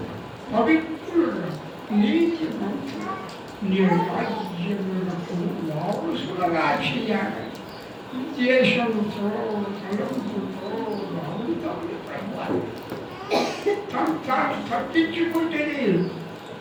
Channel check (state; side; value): identical; both; correlation 1.00